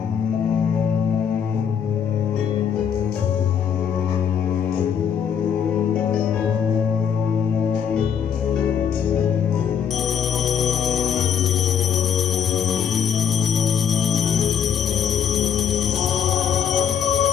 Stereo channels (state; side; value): quieter; right; 7.8 dB